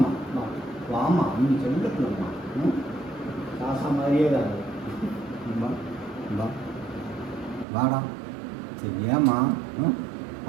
வா வாம்மா நீ சொல்லப்பில்லம்மா. காசா மாதிரியே தான் வா வாடா. சரி ஏம்மா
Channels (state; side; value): drops out; left; at 7.7 s